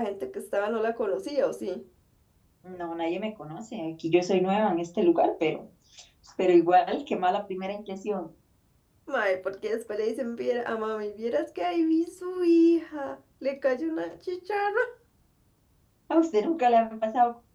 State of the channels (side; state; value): both; identical; correlation 1.00